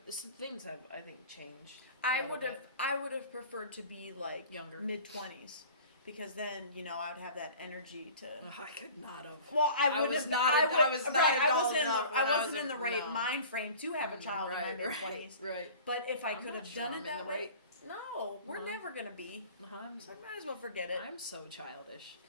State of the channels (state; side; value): inverted; both; correlation -0.42